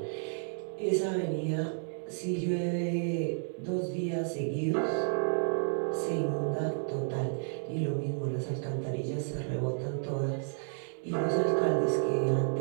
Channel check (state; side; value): silent; left; 57 dB below the other